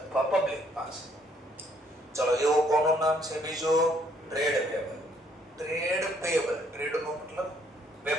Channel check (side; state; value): both; normal; correlation 0.67